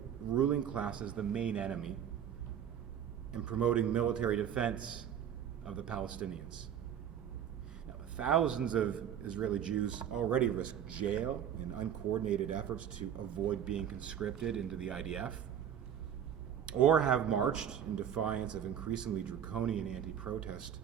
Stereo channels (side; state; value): left; quieter; 9.2 dB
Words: ruling class as the main enemy and promoting military defense of the Palestinians. Now, thousands of Israeli Jews already risk jail in uncoordinated efforts to avoid being conscripted into the IDF, or have marched in defiance of increasingly draconian anti-protest